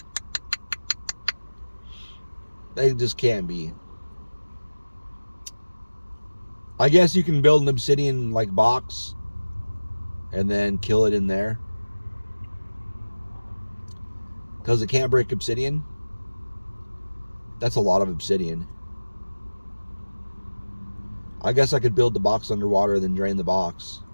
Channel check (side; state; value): both; inverted; correlation -1.00